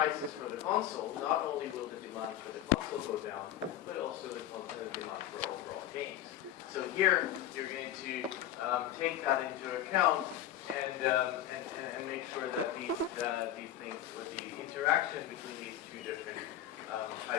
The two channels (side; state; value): right; quieter; 11.7 dB